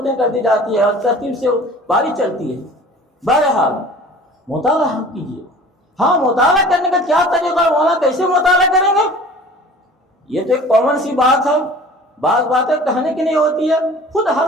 کر دی جاتی ہے اور ترتیب سے باری چلتی ہے۔ بہرحال مطالعہ کیجیے۔ ہاں، مطالعہ کرنے کا کیا طریقہ ہے، مولانا کیسے مطالعہ کریں گے؟ یہ تو ایک کامن سی بات ہے، بعض باتیں کہنے کی نہیں ہوتی ہے، خود ہر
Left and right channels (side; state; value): both; normal; correlation 0.44